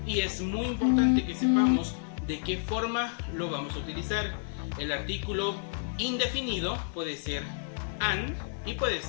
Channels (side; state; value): right; silent; digital silence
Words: y es muy importante que sepamos de qué forma lo vamos a utilizar. El artículo indefinido puede ser an y puede